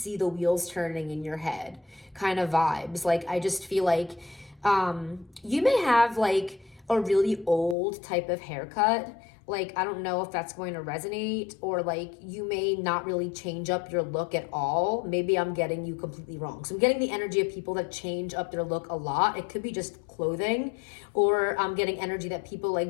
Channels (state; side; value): drops out; right; at 7.8 s